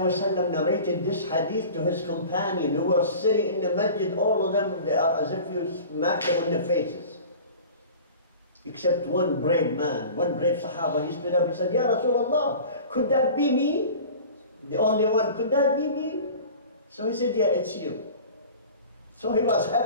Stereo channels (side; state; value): both; inverted; correlation -0.40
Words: narrated this hadith to his companion who were sitting in the masjid, all of them, they are as if you smack them on their faces. Except one brave man, one brave Sahaba, he stood up and said, Ya Rasulullah, could that be me? The only one, could that be me? So he said, yeah, it's you. So he was